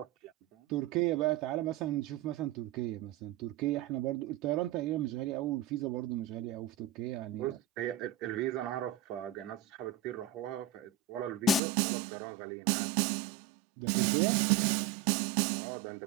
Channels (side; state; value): left; drops out; at 11.6 s